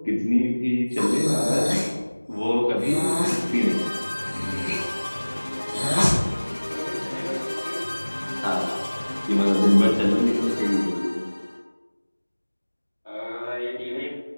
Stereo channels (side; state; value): both; inverted; correlation -1.00